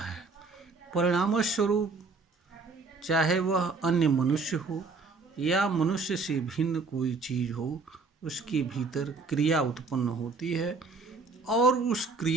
परिणामस्वरूप चाहे वह अन्य मनुष्य हो या मनुष्य से भिन्न कोई चीज़ हो, उसके भीतर क्रिया उत्पन्न होती है और उस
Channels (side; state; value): left; quieter; 4.2 dB